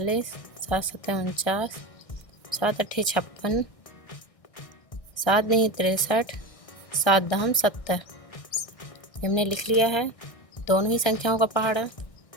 7 सते 49, 7 अठे 56, 7 नहीं 63, 7 दहम 70। हमने लिख लिया है दोनों ही संख्याओं का पहाड़ा।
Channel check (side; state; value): right; late; 1.6 ms